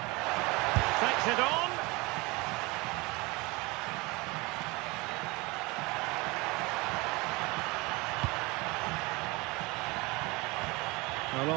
Takes it on. Well,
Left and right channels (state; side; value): quieter; left; 24.5 dB